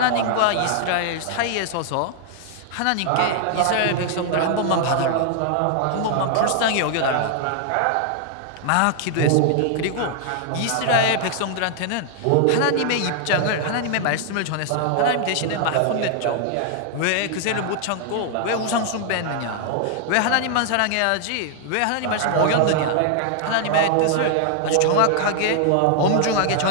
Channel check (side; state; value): both; different; correlation 0.00